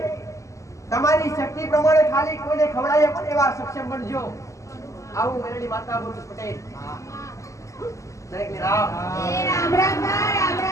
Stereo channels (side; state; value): right; late; 0.15 ms